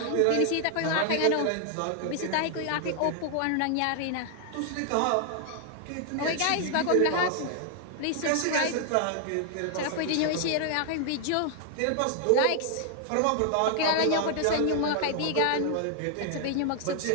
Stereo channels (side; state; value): both; different; correlation 0.00